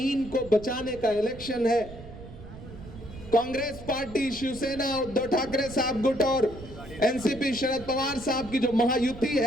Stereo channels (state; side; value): noise; right; rumble, 15 dB below the sound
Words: को बचाने का इलेक्शन है। कांग्रेस पार्टी, शिवसेना, उद्धव ठाकरे साहब गुट और एनसीपी शरद पवार साहब की जो महायुति